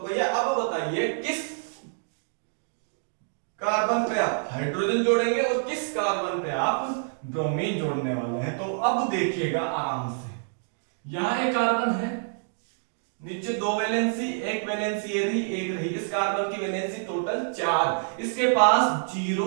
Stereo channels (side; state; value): left; silent; digital silence